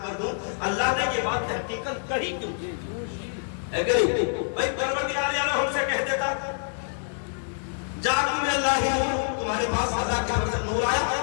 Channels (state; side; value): silent; right; digital silence